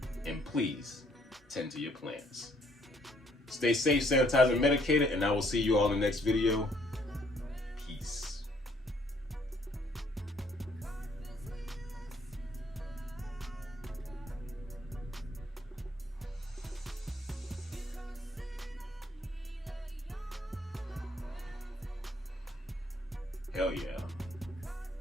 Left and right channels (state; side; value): normal; both; correlation 0.65